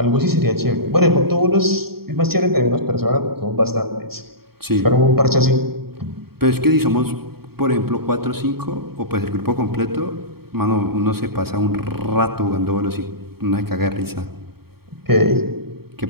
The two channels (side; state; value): left; late; 0.95 ms